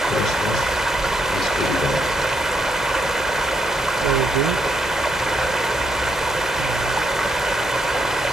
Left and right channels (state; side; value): normal; both; correlation 0.78